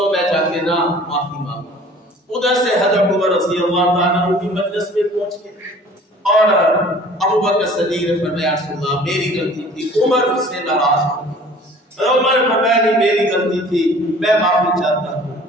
میں جا کے نا معافی مانگوں۔ ادھر سے حضرت عمر رضی اللہ تعالیٰ عنہ کی مجلس میں پہنچ گئے اور ابوبکر صدیق نے فرمایا رسول اللہ میری غلطی تھی، عمر اس سے ناراض ہو گئے۔ عمر نے فرمایا نہیں میری غلطی تھی، میں معافی چاہتا ہوں۔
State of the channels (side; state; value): both; normal; correlation 0.49